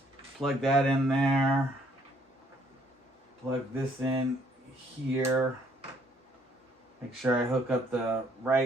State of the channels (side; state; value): both; normal; correlation 0.65